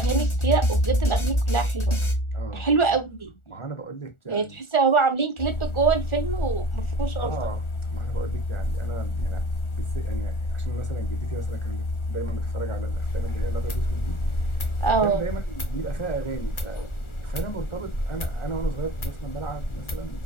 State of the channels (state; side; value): late; right; 1.4 ms